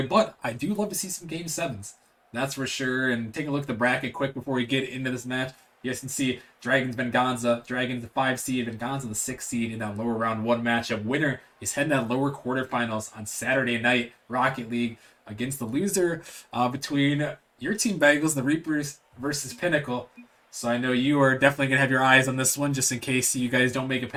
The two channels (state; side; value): identical; both; correlation 1.00